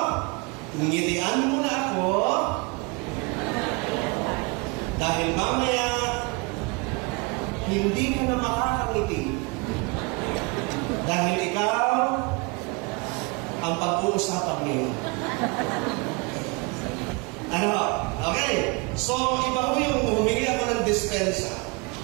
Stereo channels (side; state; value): left; quieter; 29.2 dB